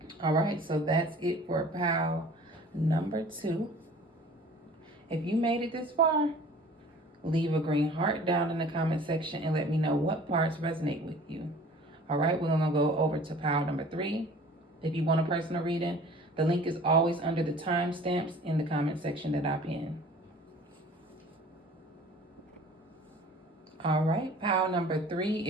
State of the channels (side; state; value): both; normal; correlation 0.47